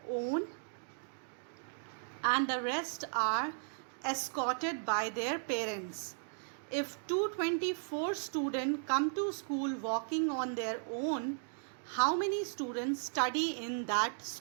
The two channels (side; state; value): left; silent; digital silence